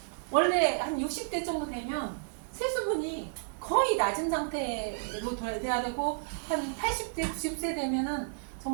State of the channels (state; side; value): silent; left; 56 dB below the other